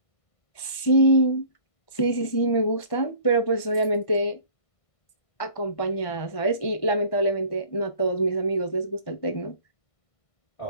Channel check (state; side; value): late; right; 1.5 ms